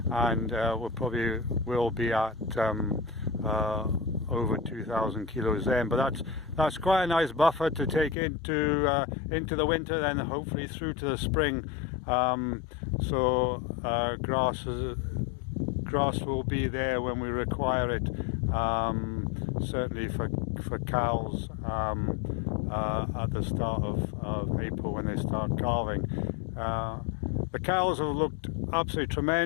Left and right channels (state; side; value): drops out; right; at 8.2 s